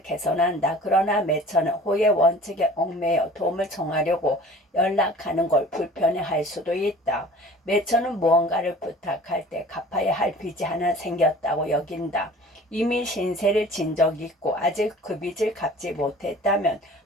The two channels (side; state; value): both; normal; correlation 0.45